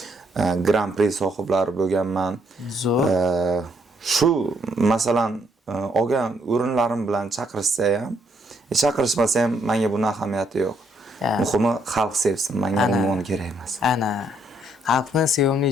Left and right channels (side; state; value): both; normal; correlation 0.71